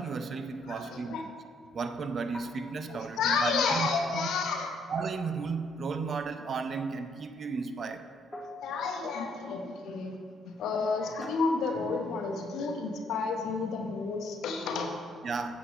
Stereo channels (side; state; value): both; normal; correlation 0.68